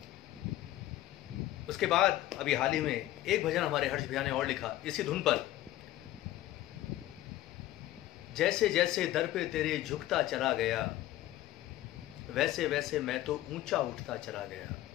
उसके बाद अभी हाल ही में एक भजन हमारे हर्ष भैया ने और लिखा इसी धुन पर, जैसे जैसे दर पे तेरे झुकता चला गया, वैसे वैसे मैं तो ऊंचा उठता चला गया।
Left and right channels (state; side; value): quieter; right; 14.8 dB